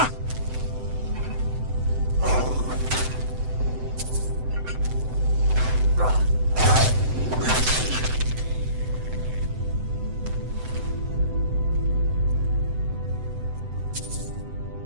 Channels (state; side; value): late; left; 7.8 ms